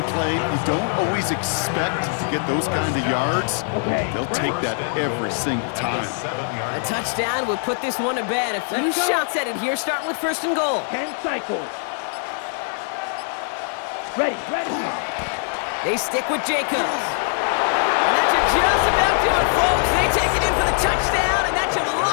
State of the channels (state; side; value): silent; right; 57 dB below the other